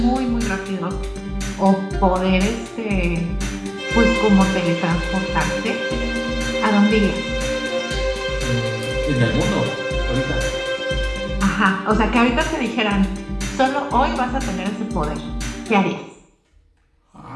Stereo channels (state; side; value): identical; both; correlation 1.00